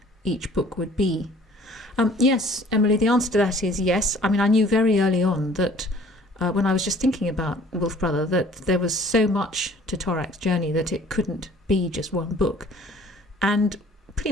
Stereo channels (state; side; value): normal; both; correlation 0.53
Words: each book would be? Yes, Emily, the answer to that is yes. I mean, I knew very early on that when I was just thinking about Wolf Brother, that there was so much to Torak's journey that it couldn't be just one book. And